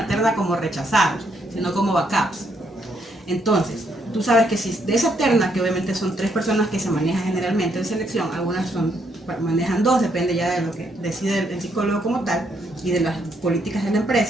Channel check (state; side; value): normal; both; correlation 0.74